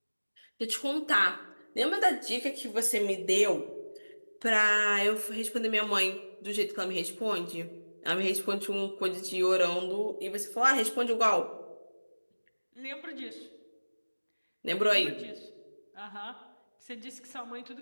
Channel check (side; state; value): both; inverted; correlation -1.00